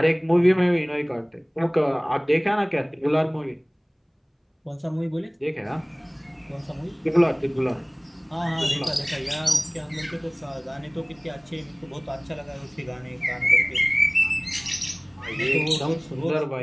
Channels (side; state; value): both; identical; correlation 1.00